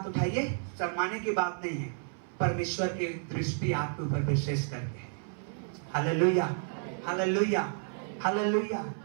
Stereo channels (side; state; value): left; silent; 57 dB below the other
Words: उठाइए। शर्माने की बात नहीं है, परमेश्वर की दृष्टि आपके ऊपर विशेष करके है। Hallelujah, hallelujah, hallelujah.